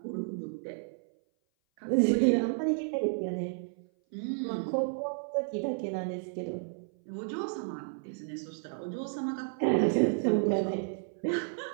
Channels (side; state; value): left; silent; 56 dB below the other